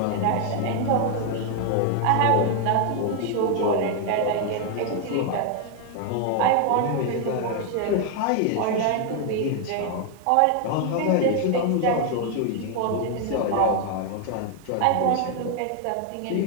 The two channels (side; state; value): both; different; correlation 0.00